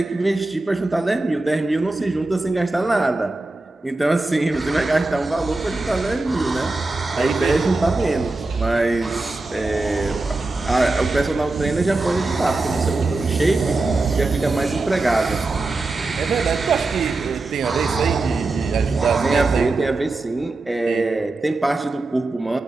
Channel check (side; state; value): left; quieter; 3.2 dB